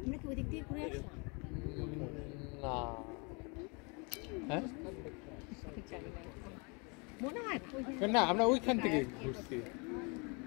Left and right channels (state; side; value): quieter; right; 31.9 dB